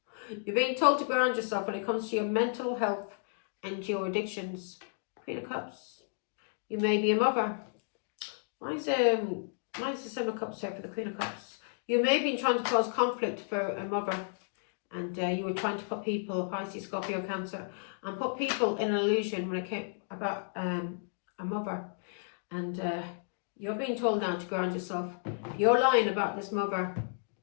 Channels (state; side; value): silent; right; digital silence